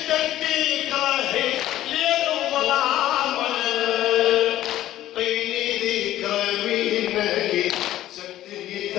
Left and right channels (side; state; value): right; quieter; 13.7 dB